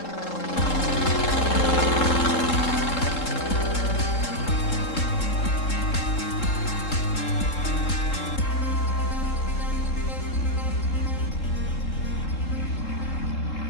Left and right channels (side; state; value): right; late; 3.7 ms